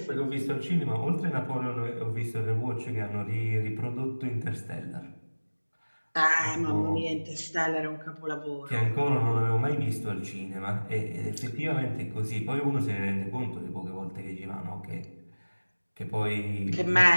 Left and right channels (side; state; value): both; inverted; correlation -1.00